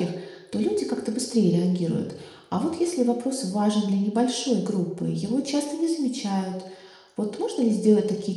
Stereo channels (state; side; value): identical; both; correlation 1.00